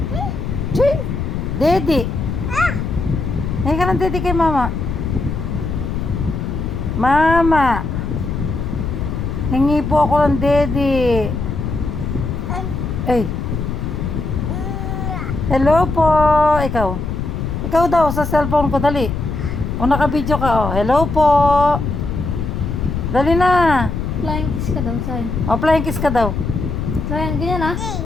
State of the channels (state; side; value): noise; left; rumble, 3 dB below the sound